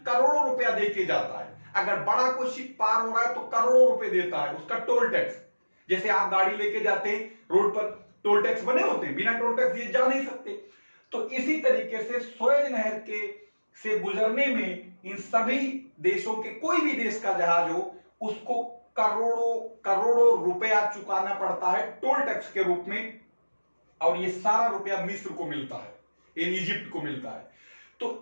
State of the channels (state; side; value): inverted; both; correlation -1.00